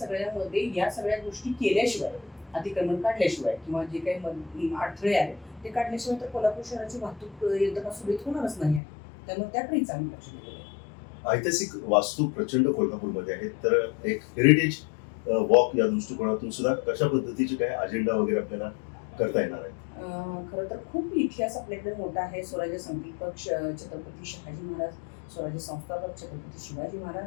या सगळ्या गोष्टी केल्याशिवाय, अतिक्रमण काढल्याशिवाय किंवा जे काही अडथळे आहेत ते काढल्याशिवाय तर कोल्हापूर शहराची वाहतूक यंत्रणा सुरळीत होणारच नाही आहे. त्यामुळे त्याकडेही चांगलं लक्ष दिलेलं आहे. ऐतिहासिक वास्तू प्रचंड कोल्हापूरमध्ये आहेत, तर एक हेरिटेज वॉक या दृष्टिकोनातून सुद्धा कशा पद्धतीचे काय अजेंडा वगैरे आपल्याला करता येणार आहे? खरं तर खूप इतिहास आपल्याकडे मोठा आहे. स्वराज्य संकल्पक छत्रपती शहाजी महाराज, स्वराज्य संस्थापक छत्रपती शिवाजी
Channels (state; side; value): drops out; right; at 8.8 s